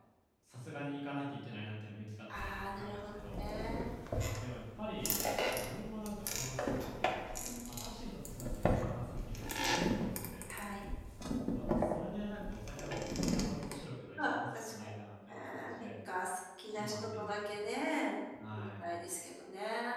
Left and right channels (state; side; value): identical; both; correlation 1.00